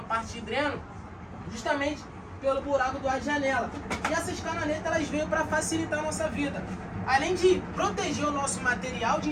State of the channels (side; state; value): both; identical; correlation 1.00